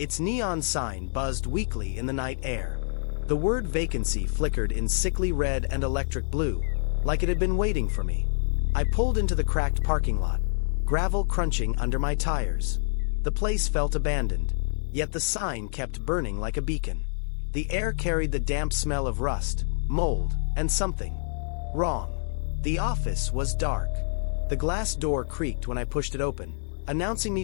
neon sign buzzed weakly in the night air. The word vacancy flickered in sickly red and electric blue, like it had been waiting for me. I pulled into the cracked parking lot, gravel crunching under my tires. The place felt abandoned, yet the sign kept burning like a beacon. The air carried the damp smell of rust, mold, and something wrong. The office was dark. The glass door creaked when I pushed it open, announcing me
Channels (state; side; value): silent; right; 60 dB below the other